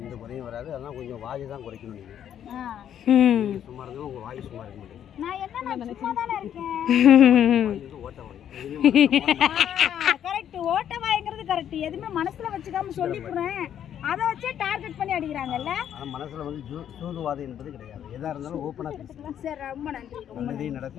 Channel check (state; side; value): quieter; right; 9.8 dB